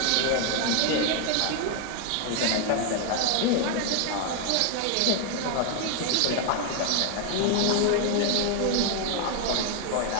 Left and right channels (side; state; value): both; different; correlation 0.01